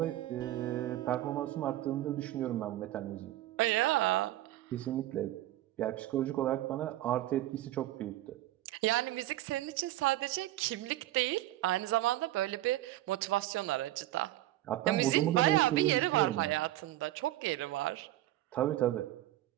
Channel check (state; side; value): quieter; left; 15.1 dB